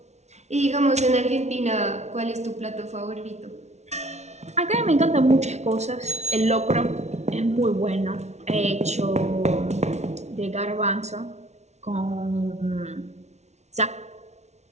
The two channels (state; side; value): late; left; 0.32 ms